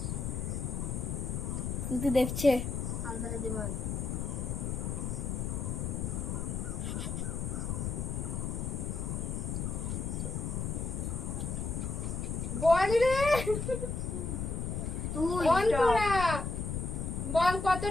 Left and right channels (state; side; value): noise; left; rumble, 2 dB below the sound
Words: তুই দেখছে আন্ধারে দিমাগ। বল রে তুই অন্তরা, বল